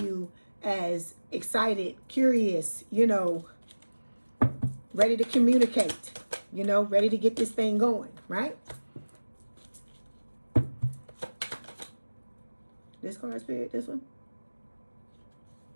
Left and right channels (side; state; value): both; inverted; correlation -1.00